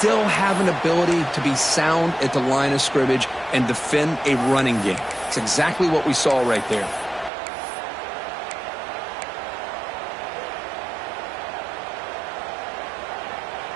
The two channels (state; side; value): drops out; left; at 7.3 s